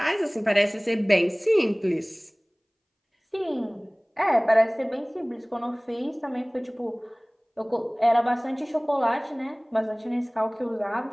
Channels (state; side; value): identical; both; correlation 1.00